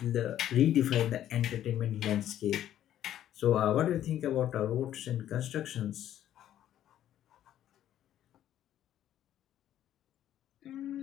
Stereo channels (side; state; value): right; quieter; 11.6 dB